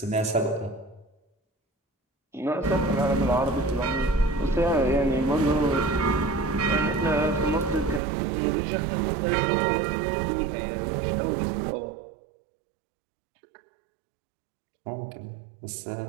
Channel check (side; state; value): left; drops out; at 8.0 s